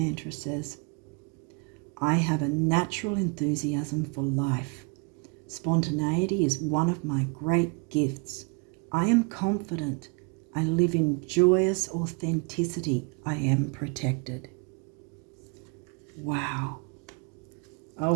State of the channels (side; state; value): left; quieter; 33.0 dB